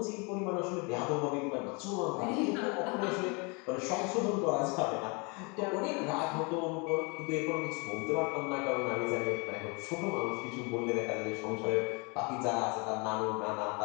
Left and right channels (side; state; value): right; quieter; 30.8 dB